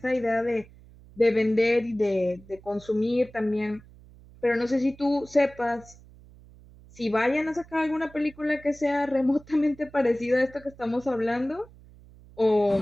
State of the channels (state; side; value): noise; right; hum, 23 dB below the sound